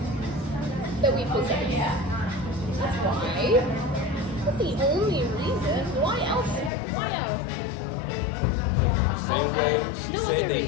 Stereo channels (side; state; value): right; drops out; at 6.7 s